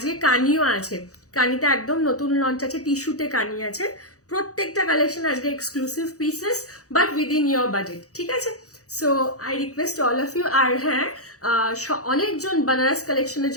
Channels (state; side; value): late; right; 0.66 ms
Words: কানিও আছে। কানিতে একদম নতুন লঞ্চ আছে, টিস্যুতে কানি আছে। প্রত্যেকটা কালেকশন আজকে exclusive pieces, but within your budget. ঠিক আছে, so I request all of you. আর হ্যাঁ, অনেকজন বানারস কালেকশনের